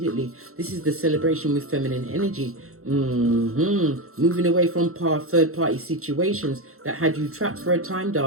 This is the celebration with feminine energy. Moving away from third party situations that had you trapped for a time,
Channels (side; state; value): left; late; 0.63 ms